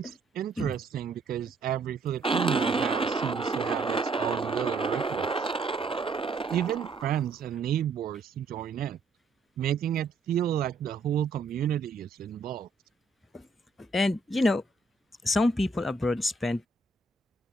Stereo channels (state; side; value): quieter; left; 3.5 dB